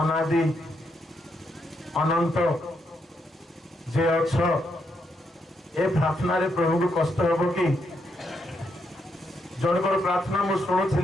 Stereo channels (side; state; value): both; normal; correlation 0.79